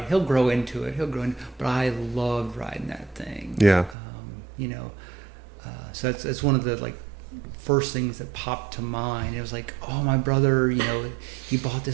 he'll grow into it. But I loved riding that thing. Yeah. You know, so that's one of the like first things that popped to mind. It was like, oh, my brother, you know, he bought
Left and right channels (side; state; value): left; drops out; at 4.0 s